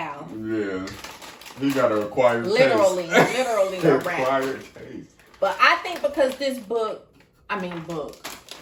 Yeah. He got a acquired Literally taste. a wrap. Acquired taste. But I think because this book, I think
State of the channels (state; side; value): identical; both; correlation 1.00